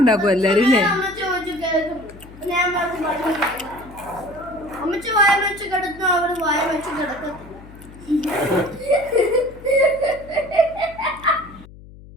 എല്ലാരും അല്ലേ? അമ്മച്ചി വായ വെച്ച് കിടന്നു, അവര് വായ വെച്ച് കിടക്കത്തില്ല.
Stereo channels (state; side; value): noise; left; hum, 19 dB below the sound